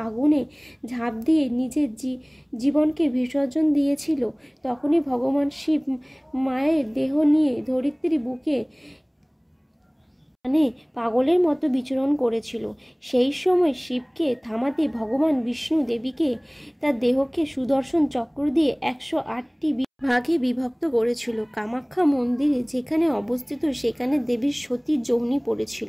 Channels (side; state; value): both; identical; correlation 1.00